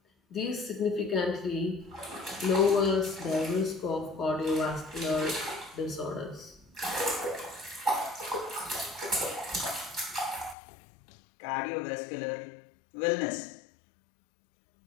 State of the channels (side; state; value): right; drops out; at 10.6 s